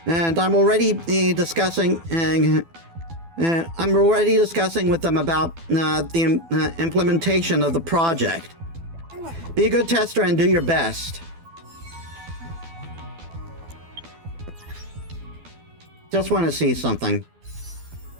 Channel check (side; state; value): left; late; 12 ms